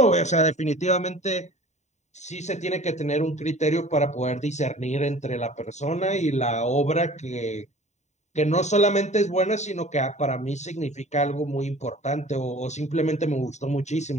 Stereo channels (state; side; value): late; right; 0.34 ms